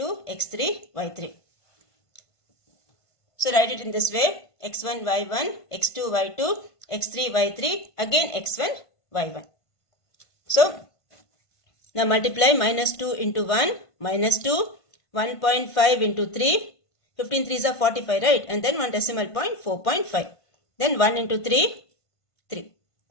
x3, y3. So write it in this way. x1, y1, x2, y2, x3, y3, again x1, y1. So now multiply -2 into 1, -2, 1.5 into 3, 15 3s are 45, right? And then one decimal point, 4.5. Then 1 into 3, 3.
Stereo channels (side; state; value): right; late; 1.5 ms